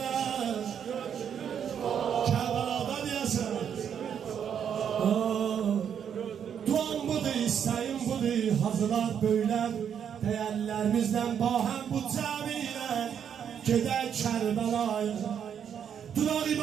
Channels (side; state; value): left; quieter; 8.3 dB